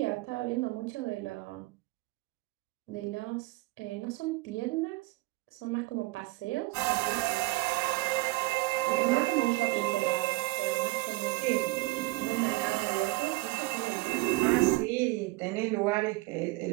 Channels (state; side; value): quieter; left; 22.2 dB